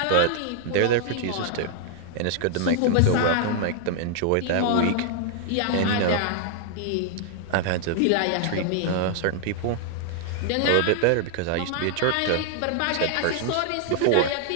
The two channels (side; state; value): both; different; correlation -0.01